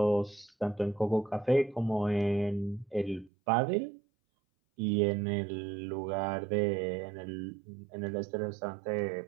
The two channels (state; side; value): drops out; left; at 3.3 s